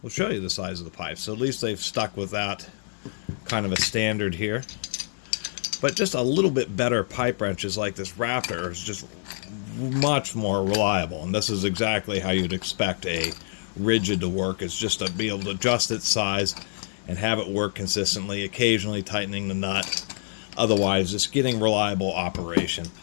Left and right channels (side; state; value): right; silent; 61 dB below the other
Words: will show you the size of the pipe. So at least they've stuck with that kind of a standard here. But just a little bit better pipe wrenches like this Raptor is just much more reliable. And this is exactly how you'd expect a rigid to work. It's just to be able to adjust its size and have it work consistently, occasionally tightening the nut. Otherwise, just getting reliable operation.